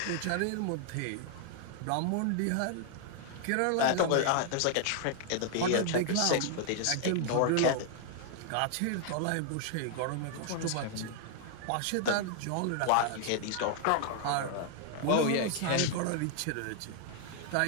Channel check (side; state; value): both; different; correlation 0.00